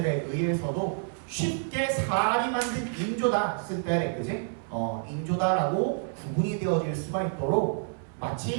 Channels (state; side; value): silent; left; 59 dB below the other